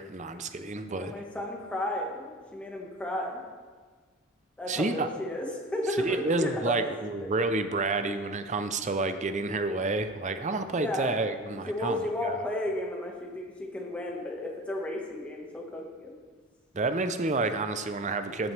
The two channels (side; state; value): both; normal; correlation 0.35